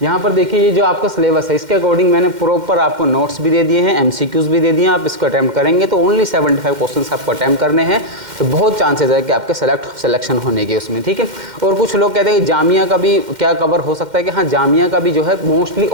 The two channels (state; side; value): late; left; 2.1 ms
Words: यहाँ पर देखिए, ये जो आपका सिलेबस है इसके अकॉर्डिंग मैंने प्रॉपर आपको नोट्स भी दे दिए हैं, एमसीक्यूज़ भी दे दिए हैं। आप इसको अटैम्प्ट करेंगे तो ओनली 75 क्वेश्चंस आपको अटैम्प्ट करने हैं, तो बहुत चांसेस है कि आपके सिलेक्शन होने के उसमें, ठीक है। और कुछ लोग कहते हैं कि जामिया का भी क्या कवर हो सकता है, कि हाँ जामिया का भी जो है मोस्टली,